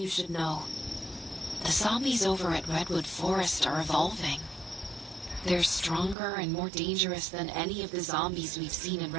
should know. The zombies over at Redwood Forest are evolving. They're stronger and more dangerous than any of the zombies we've seen in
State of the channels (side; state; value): left; drops out; at 6.2 s